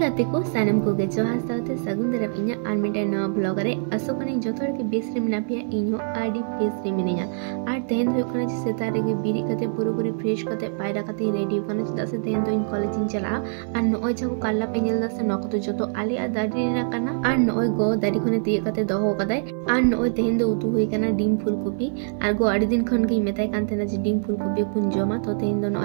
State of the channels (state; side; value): silent; left; 56 dB below the other